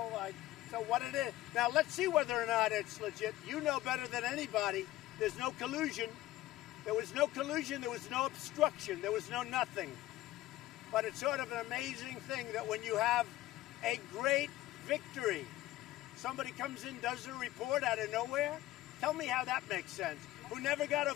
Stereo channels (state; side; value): quieter; right; 16.0 dB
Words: so what it is. Now, let's see whether or not it's legit. You know better than anybody. There's no collusion. There was no collusion. There was no obstruction. There was no nothing. But it's sort of an amazing thing that when you have a great victory, somebody comes in, does a report out of nowhere. Tell me how that makes sense. Who never got a